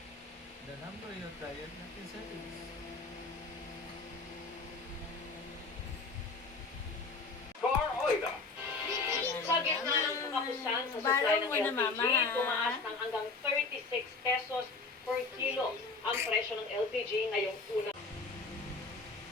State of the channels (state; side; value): quieter; right; 3.9 dB